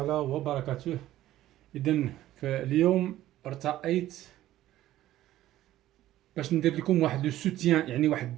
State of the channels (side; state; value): left; quieter; 14.2 dB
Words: وبركاته. إذن فاليوم ارتأيت باش ندير لكم واحد لو سوتيان، يعني واحد